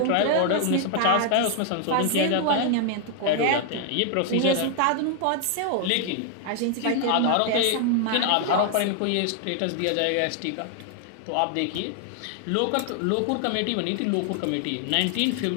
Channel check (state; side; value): different; both; correlation 0.00